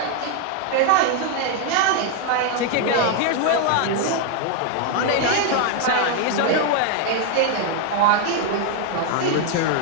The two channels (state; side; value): different; both; correlation 0.01